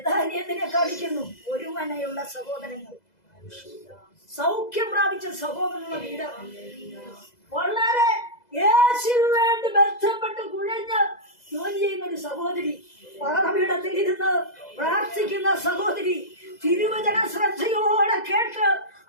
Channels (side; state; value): right; late; 2.0 ms